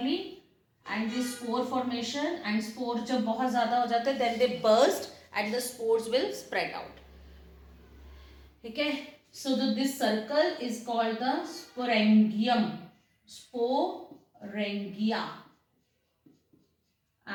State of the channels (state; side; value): identical; both; correlation 1.00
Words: and the spore formation and spore जब बहुत ज़्यादा हो जाते हैं then they burst and the spores will spread out. ठीक है, so this circle is called the sporangium, sporangia,